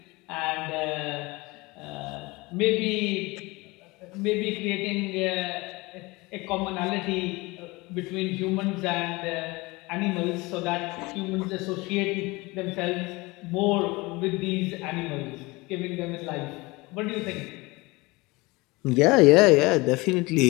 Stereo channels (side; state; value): right; quieter; 23.4 dB